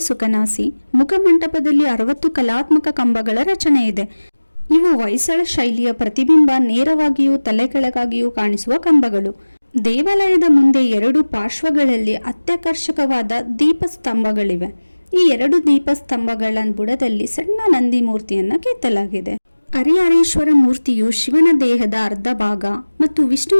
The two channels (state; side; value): inverted; both; correlation -1.00